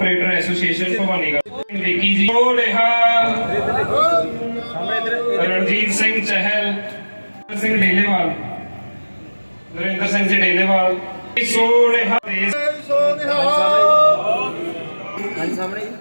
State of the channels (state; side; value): inverted; both; correlation -1.00